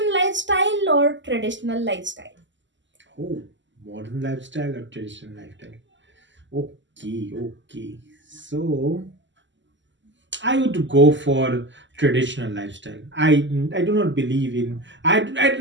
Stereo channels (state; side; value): late; left; 0.54 ms